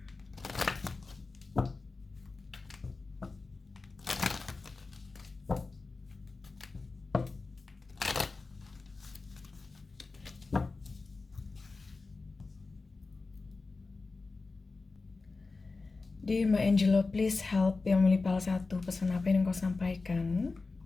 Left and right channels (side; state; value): right; quieter; 3.8 dB